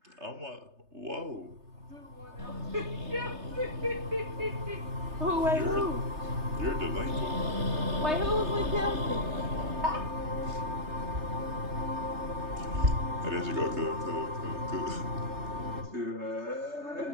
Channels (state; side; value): late; left; 3.3 ms